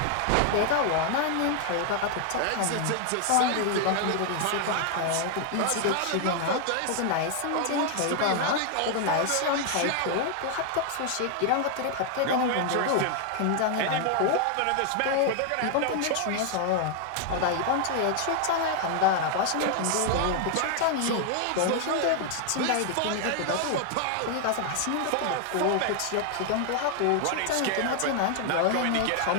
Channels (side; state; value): both; different; correlation 0.00